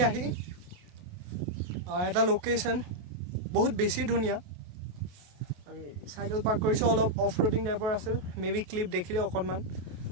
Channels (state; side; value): late; left; 28 ms